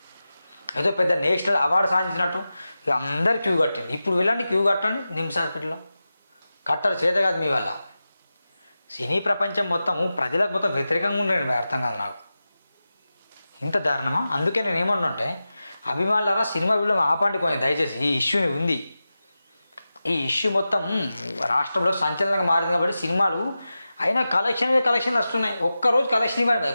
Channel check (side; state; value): both; inverted; correlation -0.94